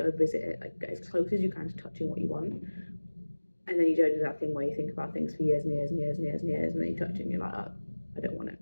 visit it, like get as close as you can to touching what you want. And then you don't do that thing where you think about things for years and years and years and years and years, and then you touch it and you're like, oh, I don't want it.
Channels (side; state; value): both; inverted; correlation -1.00